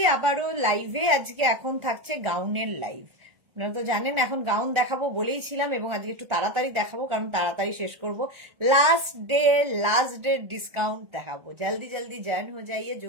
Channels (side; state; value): left; late; 1.4 ms